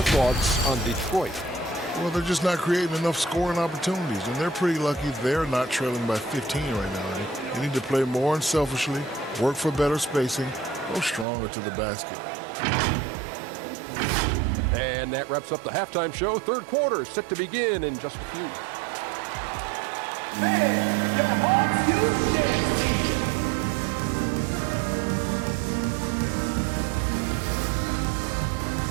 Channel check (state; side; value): drops out; left; at 11.2 s